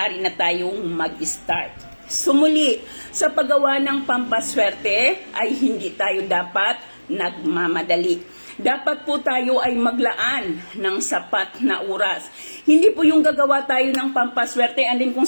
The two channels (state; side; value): inverted; both; correlation -1.00